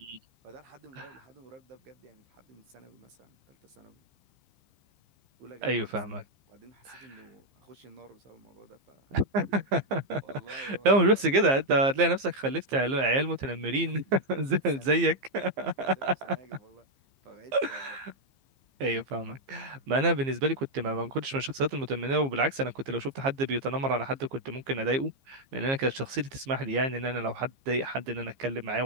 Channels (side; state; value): left; late; 15 ms